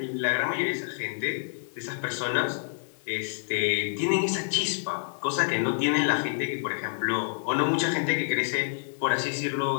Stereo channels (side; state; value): right; silent; 59 dB below the other